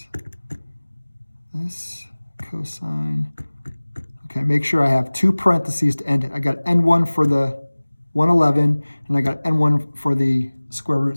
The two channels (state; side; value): inverted; both; correlation -1.00